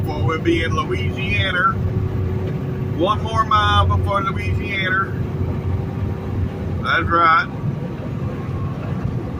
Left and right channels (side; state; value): both; identical; correlation 1.00